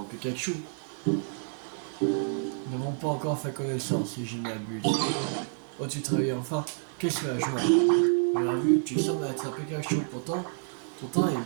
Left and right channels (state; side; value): silent; left; digital silence